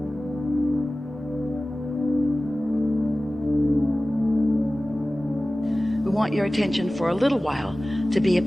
Want your attention for a little while to be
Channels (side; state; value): both; normal; correlation 0.97